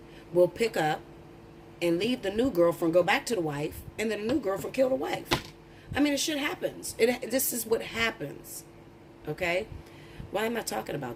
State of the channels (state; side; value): identical; both; correlation 1.00